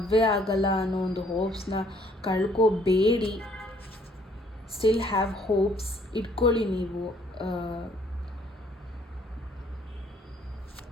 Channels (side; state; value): both; normal; correlation 0.63